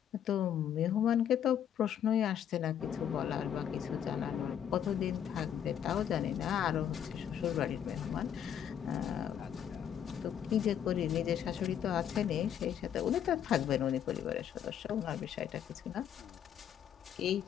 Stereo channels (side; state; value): right; quieter; 9.4 dB